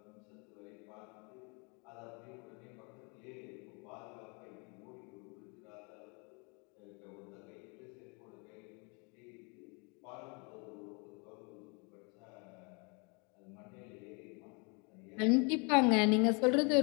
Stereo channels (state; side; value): quieter; right; 32.8 dB